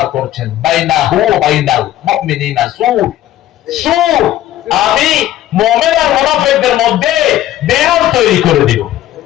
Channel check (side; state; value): right; quieter; 13.4 dB